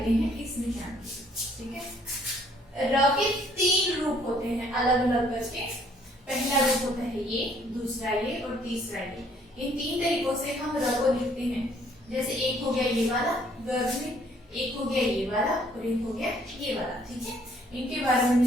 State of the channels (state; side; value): normal; both; correlation 0.63